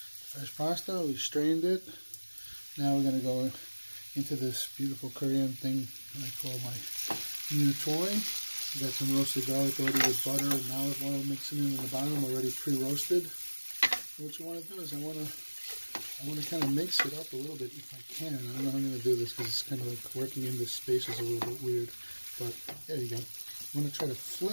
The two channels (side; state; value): both; inverted; correlation -1.00